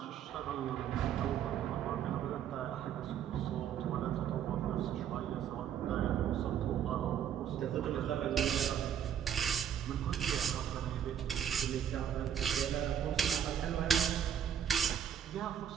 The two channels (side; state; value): left; quieter; 9.2 dB